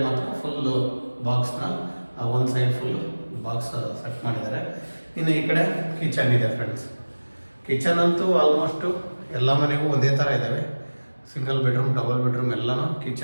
ಮಾತ್ರ ಫುಲ್ಲು ಬಾಕ್ಸ್ನ ಒಂದು ಸೈಡ್ ಫುಲ್ಲು ಬಾಕ್ಸ್ ಸೆಟ್ ಮಾಡಿದ್ದಾರೆ. ಇನ್ನು ಈ ಕಡೆ ಕಿಚನ್ ಇದೆ ಫ್ರೆಂಡ್ಸ್. ಕಿಚನ್ ಅಂತೂ ಆಲ್ಮೋಸ್ಟು ಎಲ್ಲ ಮನೆಗೂ ಒಂದೇ ಥರ ಇದ್ದಾವೆ, ಸಿಂಗಲ್ ಬೆಡ್ರೂಮ್, ಡಬಲ್ ಬೆಡ್ರೂಮ್ ಎಲ್ಲನೂ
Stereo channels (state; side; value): inverted; both; correlation -1.00